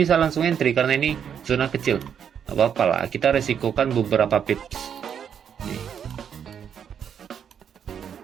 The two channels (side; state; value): left; quieter; 8.1 dB